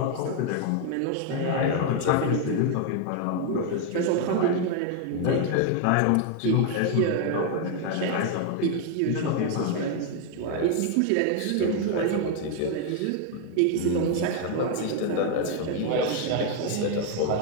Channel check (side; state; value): both; different; correlation 0.00